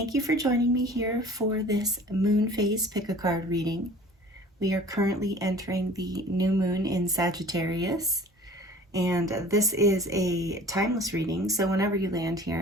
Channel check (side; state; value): both; normal; correlation 0.46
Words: you for joining me here for this moon phase pick-a-card reading. We are currently entering the new moon in Sagittarius, and this is a timeless reading, so whenever you land